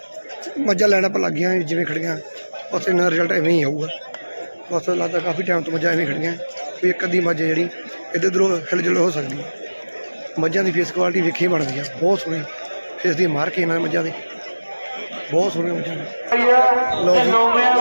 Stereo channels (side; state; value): both; inverted; correlation -1.00